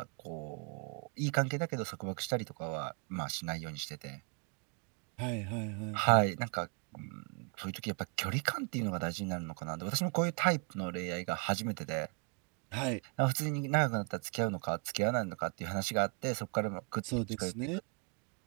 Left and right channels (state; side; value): quieter; left; 36.7 dB